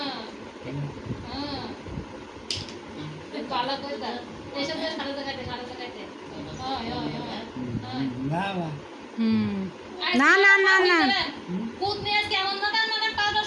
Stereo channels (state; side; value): identical; both; correlation 1.00